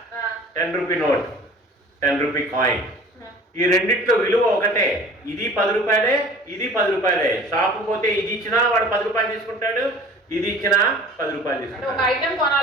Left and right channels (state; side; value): normal; both; correlation 0.45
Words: 10 రూపీ నోట్, 10 రూపీ కాయిన్. ఈ రెండిట్లో విలువ ఒకటే. ఇది 10 రూపాయలే, ఇది 10 రూపాయలే. షాపు పోతే ఇది ఇచ్చినా వాడు 10 రూపాయలు తీసుకుంటాడు, ఇది ఇచ్చినా 10 రూపాయలు తీసుకుంటాడు. ఒక